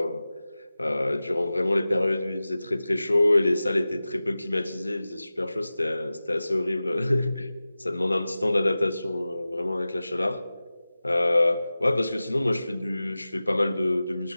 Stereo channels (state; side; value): inverted; both; correlation -0.96